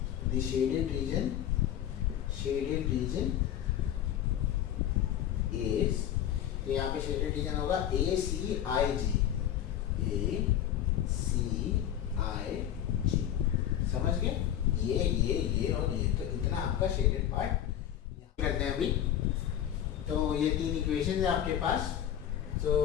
the shaded region is, तो यहाँ पे shaded region होगा ACIG, समझ गए, ये और ये, तो इतना आपका शेडेड पार्ट करते हैं अभी। तो ये तीन इक्वेशन है आपके पास, तो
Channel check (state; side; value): quieter; right; 10.8 dB